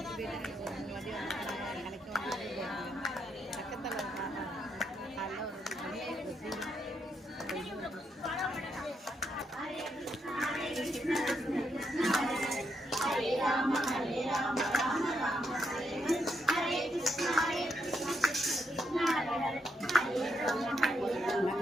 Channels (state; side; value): normal; both; correlation 0.79